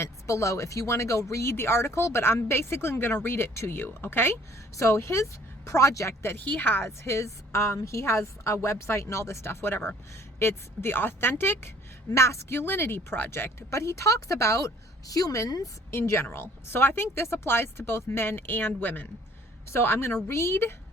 below if you want to go read the article, but I'm basically going to read it to you, okay? So his project that he has, he has a website and all this stuff, whatever. It's the Authentic Masculinity Project, but he talks about humans in general. So I think this applies to both men and women. So I'm going to read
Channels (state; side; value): normal; both; correlation 0.57